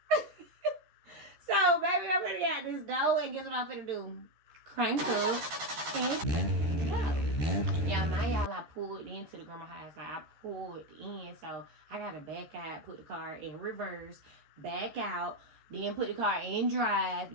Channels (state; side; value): late; left; 13 ms